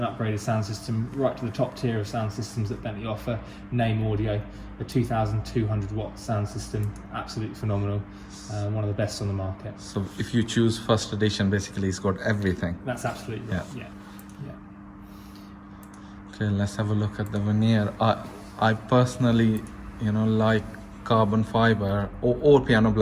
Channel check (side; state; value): both; identical; correlation 1.00